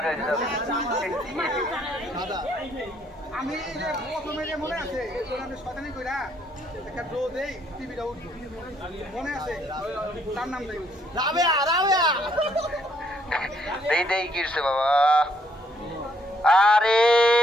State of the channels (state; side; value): normal; both; correlation 0.68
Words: হয়ে যাও। আমি প্রথমে যে মনে আছে শতানি কইরা একটা ড্র দেই, টিভিটা উঠলো মনে আছে, তার নাম দেই রাবেয়া, রাবেয়া দেই দেই কিরছে বাবা। আরে